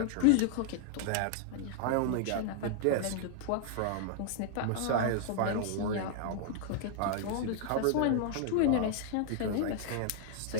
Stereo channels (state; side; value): different; both; correlation -0.01